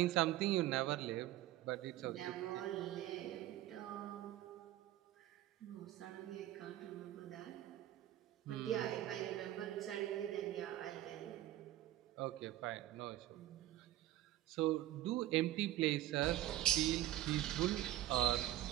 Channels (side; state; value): left; quieter; 14.3 dB